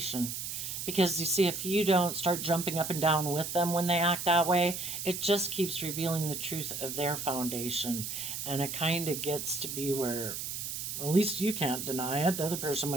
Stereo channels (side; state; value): right; noise; hiss, 5 dB below the sound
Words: Because you see, if you don't start jumping up and down with them when they act that way, it just keeps revealing the truth of their foundation. And it kind of gets to be where at least you can't deny it. The other person